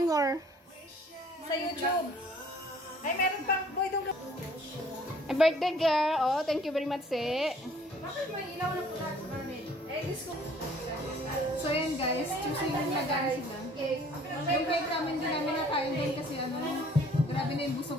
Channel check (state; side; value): normal; both; correlation 0.56